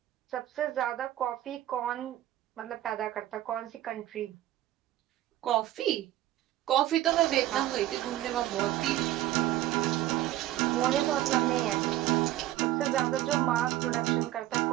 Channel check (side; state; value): left; quieter; 14.4 dB